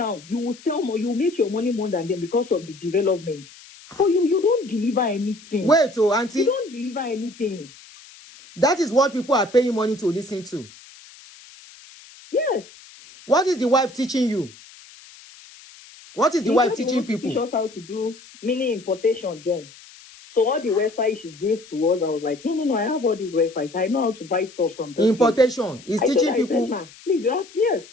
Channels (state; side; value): noise; left; hiss, 21 dB below the sound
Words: you will sell more, you make your money more than them because of the development. So you don't deliver anything. Wait, auntie. You don't deliver anything. That is what people are paying money to listen to. Yes. What is the wife teaching you? What is the wife teaching people? Teach us how to do mini importation then. So all the websites she gave to us, I was like, no, I have all these websites. I know how to buy stuff from them. Importation. He's teaching people. Please, yes.